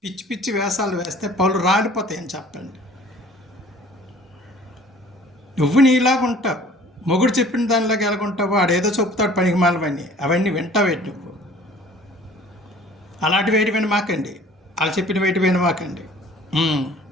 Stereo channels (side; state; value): both; normal; correlation 0.50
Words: పిచ్చి పిచ్చి వేషాలు వేస్తే పళ్ళు రాలిపోతాయని చెప్పండి. నువ్వు నీలాగా ఉంటావు, మొగుడు చెప్పిన దానిలాగా ఎలాగుంటావు? ఆడేదో చెప్తాడు పనికి మాలవన్నీ, అవన్నీ వింటావేంటి నువ్వు? అలాంటి వేటి వినమాకండి, వాళ్ళు చెప్పిన వేటి వినమాకండి.